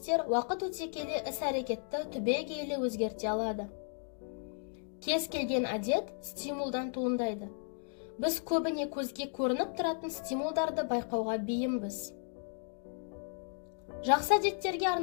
уақыт өте келе іс-әрекетті түбегейлі өзгерте алады. Кез келген әдет стимулдан туындайды. Біз көбіне көзге көрініп тұратын стимулдарды байқауға бейімбіз. Жақсы әдеттерге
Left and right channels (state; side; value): silent; right; 55 dB below the other